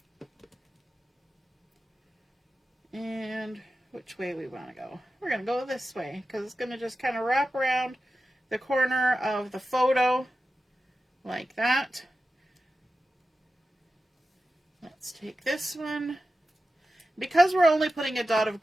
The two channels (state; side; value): normal; both; correlation 0.93